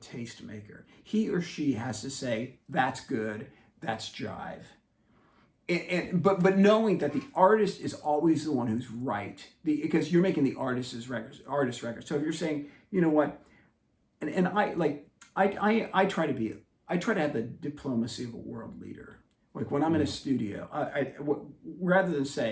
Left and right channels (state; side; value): identical; both; correlation 1.00